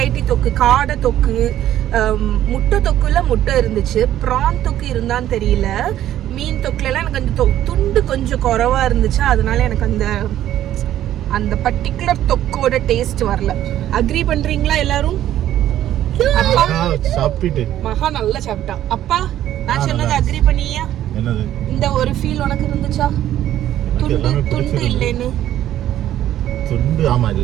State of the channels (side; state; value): left; quieter; 12.3 dB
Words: தொக்கு, காடை தொக்கு, முட்டை தொக்குல முட்டை இருந்துச்சு, ப்ரான் தொக்கு இருந்தான்னு தெரியல. மீன் தொக்குலாம் எனக்கு அந்த துண்டு கொஞ்சம் குறைவா இருந்துச்சு. அதனால எனக்கு அந்த பர்டிகுலர் தொக்கோட டேஸ்ட் வரல. அக்ரி பண்றீங்களா எல்லாரும்? அப்பா மகா நல்லா சாப்பிட்டா. அப்பா நான் சொன்னது அக்ரி பண்ணியா? இந்த ஒரு ஃபீல் உனக்கு இருந்துச்சா? துண்டு இல்லைன்னு? ஆமா,